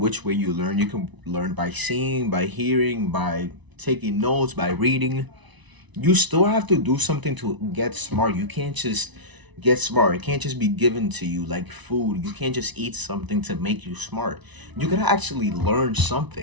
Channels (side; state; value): left; late; 1.0 ms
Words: way you learn. You can learn by seeing, by hearing, by taking notes, by reading. You still have to do something to get smart. You can't just get smart. It can't just be given to you like food. You can't just eat something to make you smart. You gotta actually learn